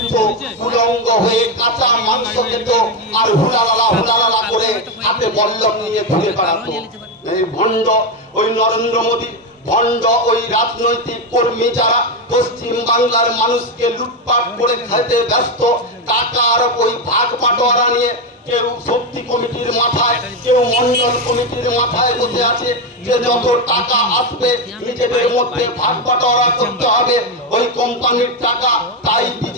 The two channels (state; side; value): normal; both; correlation 0.09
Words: উলঙ্গ হয়ে কাঁচা মাংস খেত আর হুলালালা করে হাতে বল্লম নিয়ে ঘুরে বেড়াতো। এই ভণ্ড ওই নরেন্দ্র মোদী, ভণ্ড ওই রাজনৈতিক কর্মী যারা পশ্চিম বাংলার মানুষকে লুটপাট করে খেতে ব্যস্ত, টাকার ওই ভাগ বাটোয়ারা নিয়ে কেউ শক্তি কমিটির মাথায়, কেউ মন্ডল কমিটির মাথায় বসে আছে যে যত টাকা আসবে নিজেদের মধ্যে ভাগ বাটোয়ারা করতে হবে, ওই কোম্পানির টাকা তাই